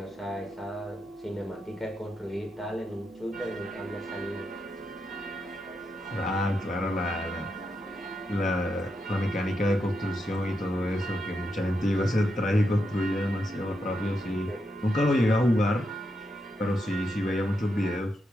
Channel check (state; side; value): normal; both; correlation 0.84